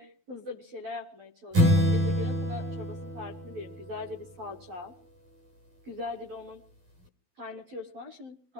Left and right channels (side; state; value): left; late; 12 ms